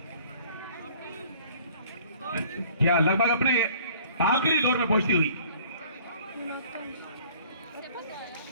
क्या लगभग अपने आखिरी दौर में पहुंचती हुई।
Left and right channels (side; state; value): both; inverted; correlation -0.53